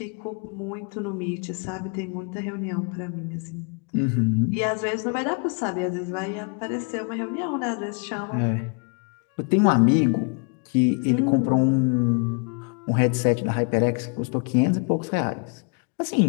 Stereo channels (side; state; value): right; quieter; 36.5 dB